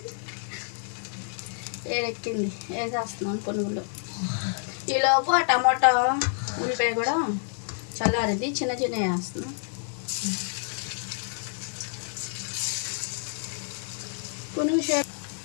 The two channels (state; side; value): silent; right; digital silence